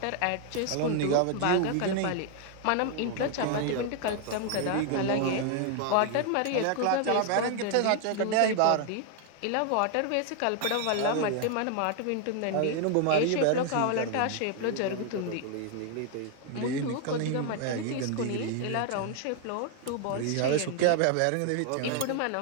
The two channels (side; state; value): both; different; correlation 0.00